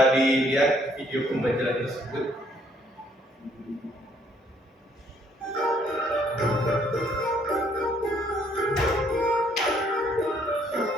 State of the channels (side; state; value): both; normal; correlation 0.66